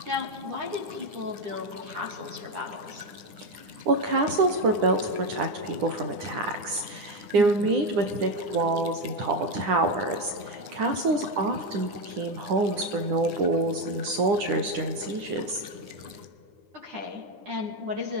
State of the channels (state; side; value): late; left; 9.8 ms